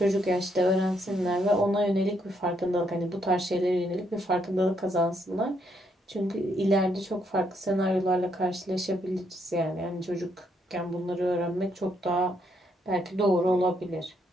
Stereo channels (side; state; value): both; normal; correlation 0.74